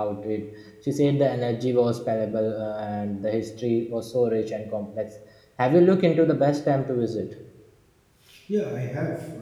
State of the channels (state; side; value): identical; both; correlation 1.00